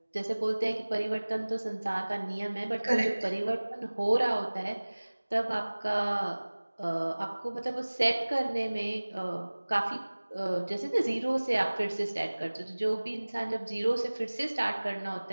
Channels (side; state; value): both; inverted; correlation -1.00